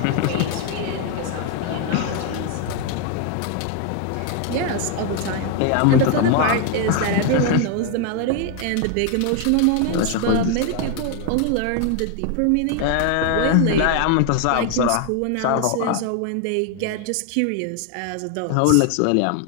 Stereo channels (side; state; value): both; different; correlation 0.01